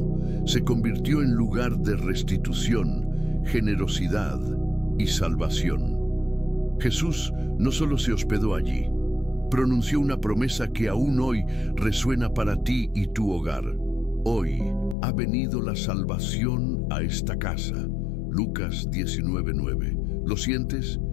se convirtió en lugar de restitución, generosidad y salvación. Jesús no solo se hospedó allí, pronunció una promesa que aún hoy resuena para ti y tu hogar. Hoy ha venido la salvación a esta casa. Lucas 19:9. ¿Lo sientes?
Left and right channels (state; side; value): drops out; right; at 15.0 s